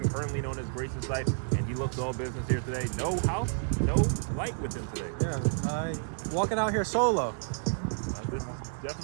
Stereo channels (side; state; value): left; silent; 58 dB below the other